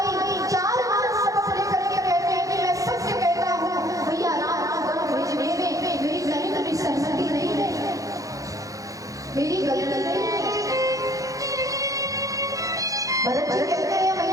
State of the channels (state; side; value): late; left; 0.16 ms